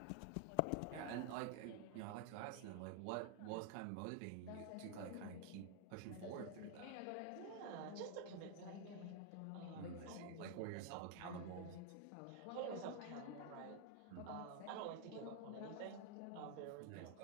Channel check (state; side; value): different; both; correlation 0.00